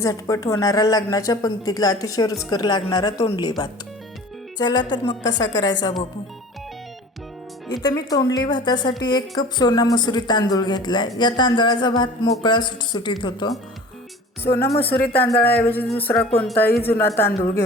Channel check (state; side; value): normal; both; correlation 0.42